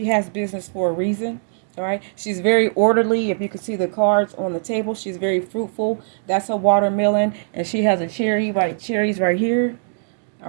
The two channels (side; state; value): left; silent; digital silence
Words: has business for a reason. All right, she's very orderly. If you can see the cards on the table, she's very fruitful. That's a watermelon, and she has a cherries right here. All